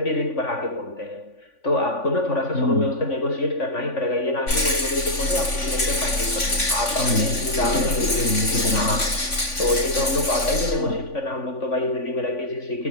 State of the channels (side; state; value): right; late; 3.5 ms